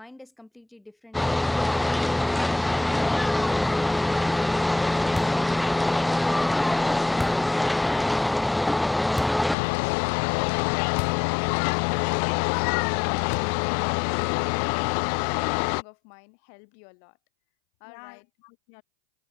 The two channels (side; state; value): right; drops out; at 9.6 s